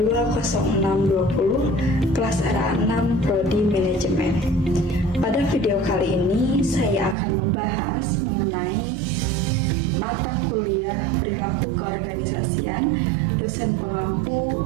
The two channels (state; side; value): drops out; left; at 7.2 s